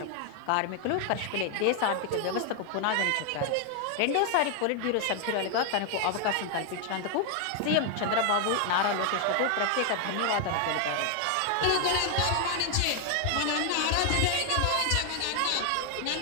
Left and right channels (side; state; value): both; different; correlation 0.00